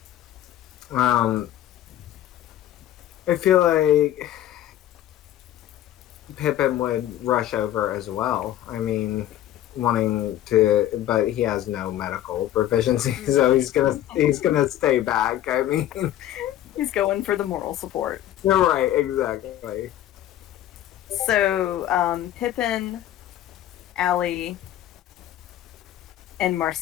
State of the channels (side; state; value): right; quieter; 12.5 dB